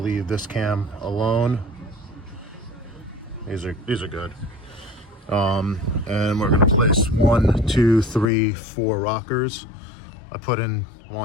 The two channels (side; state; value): right; drops out; at 8.2 s